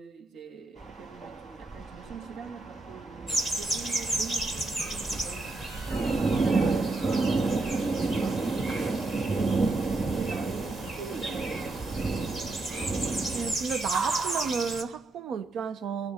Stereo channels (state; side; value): quieter; left; 3.2 dB